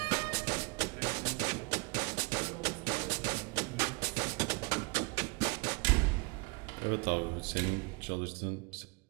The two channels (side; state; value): left; quieter; 29.2 dB